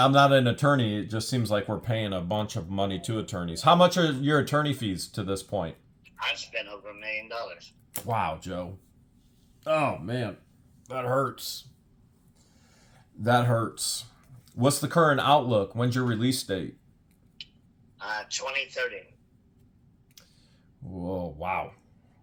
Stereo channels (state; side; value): identical; both; correlation 1.00